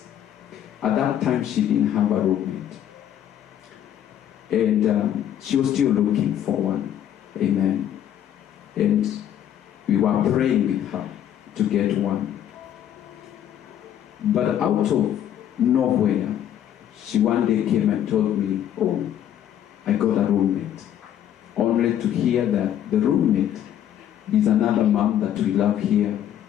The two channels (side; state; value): right; quieter; 10.6 dB